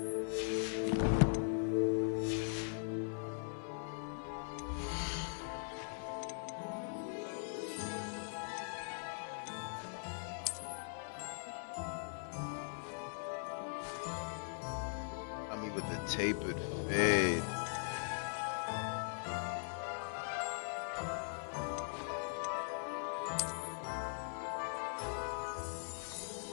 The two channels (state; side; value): silent; right; digital silence